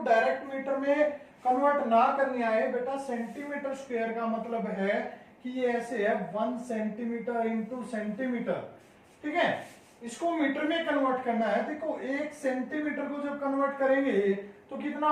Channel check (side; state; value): both; identical; correlation 1.00